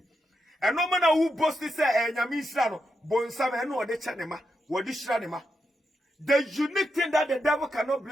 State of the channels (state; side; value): normal; both; correlation 0.84